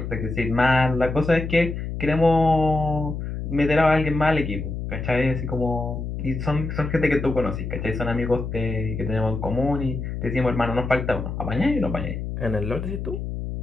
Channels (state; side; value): noise; left; hum, 5 dB below the sound